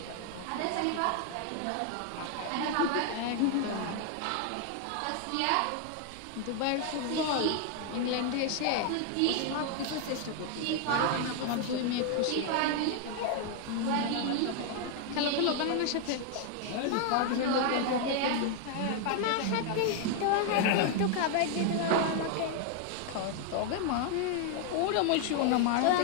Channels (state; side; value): different; both; correlation 0.00